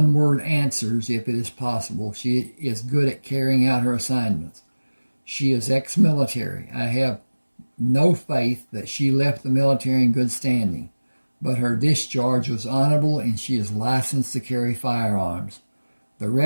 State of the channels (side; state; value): both; inverted; correlation -1.00